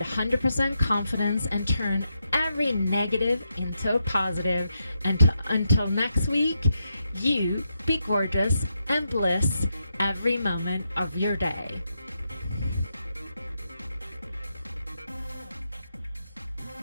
100% confidence and turn every negative into a positive. And until next week, you be gorgeous and bliss every moment of your day.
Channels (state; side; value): inverted; both; correlation -0.83